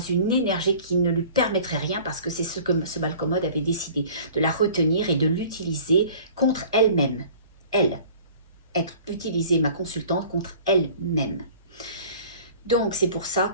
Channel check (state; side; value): inverted; both; correlation -0.46